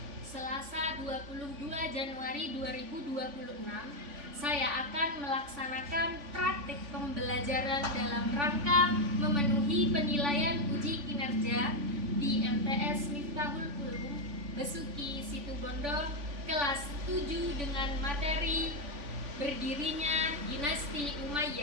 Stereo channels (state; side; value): late; left; 3.5 ms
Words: Selasa 22 Januari 2026, saya akan melaksanakan praktik pembelajaran dalam rangka memenuhi penilaian uji kinerja di MTS Miftahul Ulum Besuki Situbondo kelas 7 dengan materi berdirinya dinasti